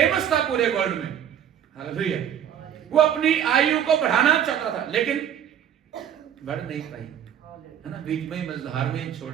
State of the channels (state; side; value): quieter; left; 9.6 dB